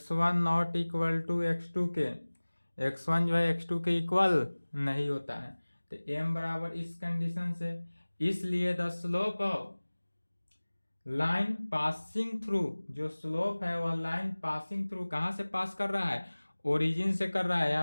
not equal to x2 के, x1 जो है x2 के इक्वल नहीं होता है। तो m बराबर इस कंडीशन से, इसलिए the slope of line passing through, जो स्लोप है वह लाइन पासिंग थ्रू, कहाँ से पास कर रहा है, ओरिजिन से कर रहा है।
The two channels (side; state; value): both; inverted; correlation -1.00